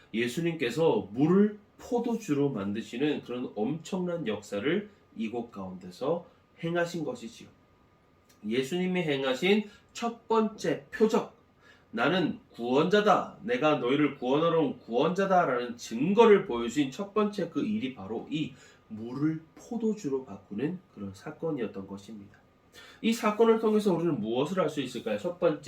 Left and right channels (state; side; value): identical; both; correlation 1.00